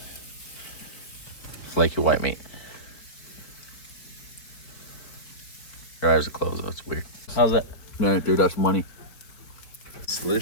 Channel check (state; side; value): late; right; 4.2 ms